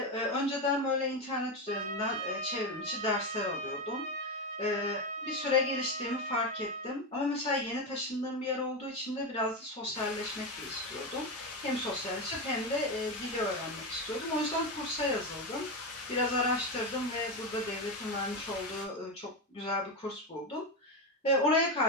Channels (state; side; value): normal; both; correlation 0.13